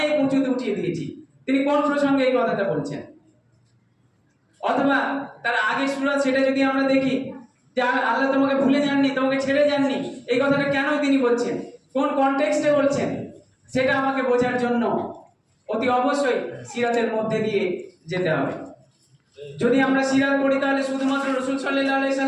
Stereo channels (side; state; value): both; identical; correlation 1.00